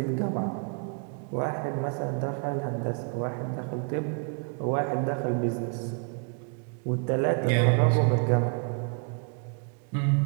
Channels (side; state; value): left; quieter; 38.7 dB